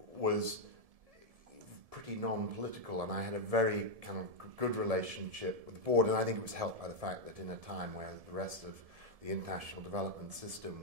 was pretty non-political, and I had a very kind of good relationship with the board, and I think it was helped by the fact that in a time where the rest of the international development system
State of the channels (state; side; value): late; left; 1.7 ms